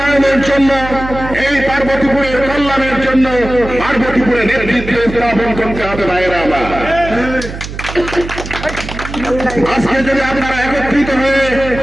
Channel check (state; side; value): noise; right; hum, 10 dB below the sound